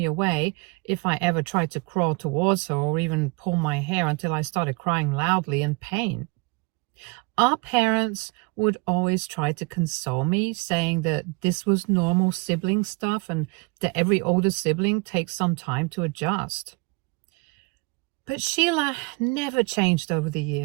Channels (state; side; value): quieter; left; 28.9 dB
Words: away if I ever tried to crawl towards her or even pull my hair until I started crying loudly in pain. Our parents would always try to console me, saying that this was normal sibling stuff and that every older sibling takes some time to adjust. But Sheila never changed over the